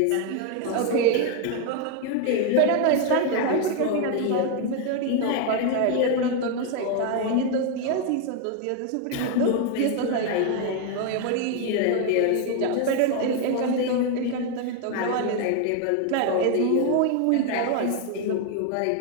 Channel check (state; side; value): different; both; correlation 0.01